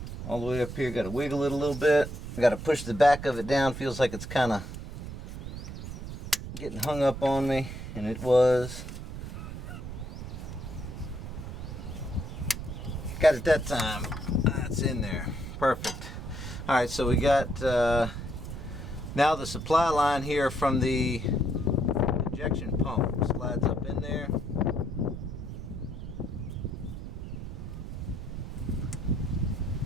All the way up here. Got to wiggle it a little bit. Got to push the back of it down. Feels like it's kind of getting hung up on me. And it was. Got it that time. That's in there. Perfect. Alright, so we got now the supply line here from the injection pump slides up in there.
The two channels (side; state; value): right; noise; rumble, 8 dB below the sound